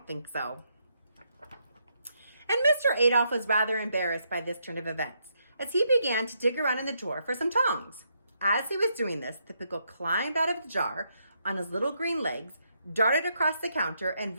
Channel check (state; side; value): inverted; both; correlation -0.77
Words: think so. And Mr. Adolph was rather embarrassed by this turn of events, as he began to dig around in the drawer for some tongs. As he was doing this, the pickle climbed out of the jar on his little green legs, darted across the counter, and